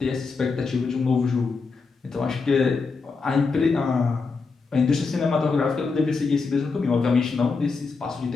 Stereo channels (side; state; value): right; quieter; 4.5 dB